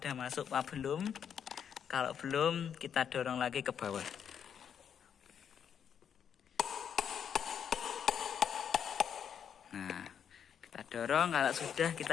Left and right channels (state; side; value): quieter; right; 8.1 dB